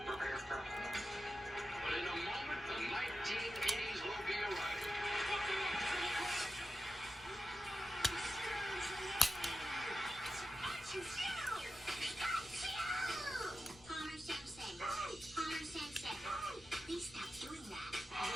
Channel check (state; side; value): noise; left; rumble, 22 dB below the sound